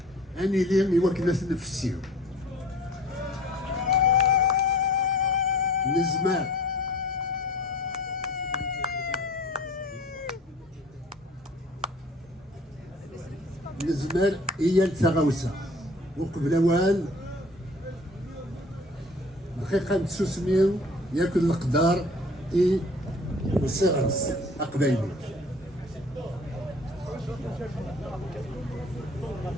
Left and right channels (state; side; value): normal; both; correlation 0.48